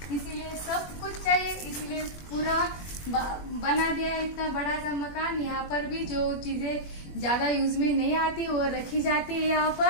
इसीलिए सब कुछ चाहिए। इसीलिए पूरा बना दिया है इतना बड़ा सा मकान। यहाँ पर भी जो चीजें ज्यादा यूज में नहीं आती वो रखी जाती है यहाँ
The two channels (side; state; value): right; late; 21 ms